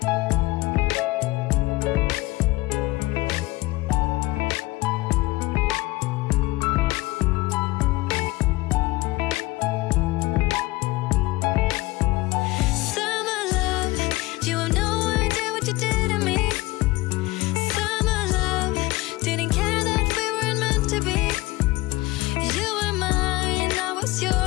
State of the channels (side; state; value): right; quieter; 20.4 dB